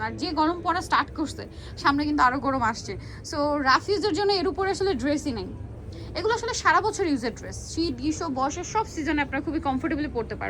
আর যে গরম পড়া স্টার্ট করছে, সামনে কিন্তু আরো গরম আসছে, সো রাফ ইউজের জন্য এর উপরে আসলে ড্রেসই নেই। এগুলো আসলে সারা বছর ইউজের ড্রেস, শীত গ্রীষ্ম বর্ষার সব সিজনে আপনারা খুবই কমফোর্টেবলি পড়তে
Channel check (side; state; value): both; identical; correlation 1.00